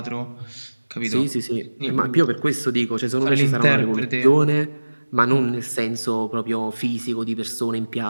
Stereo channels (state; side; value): inverted; both; correlation -1.00